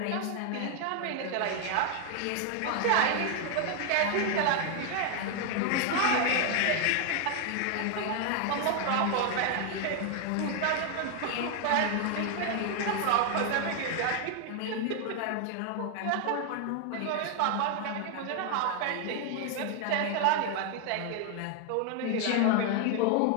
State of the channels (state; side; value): different; both; correlation 0.01